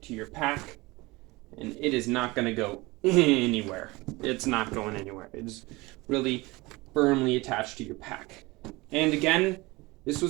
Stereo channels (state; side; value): quieter; left; 22.6 dB